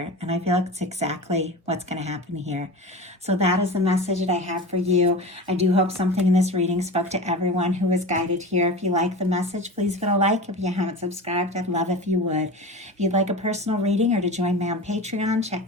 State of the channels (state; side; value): normal; both; correlation 0.30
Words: And I feel like it's exactly what's going to happen here. So that is the message that I have for you. I do hope something in this reading spoke to everyone who was guided here. If you like the message, please give it a like. If you haven't subscribed, I'd love if you would. If you'd like a personal reading or to join me on Patreon, check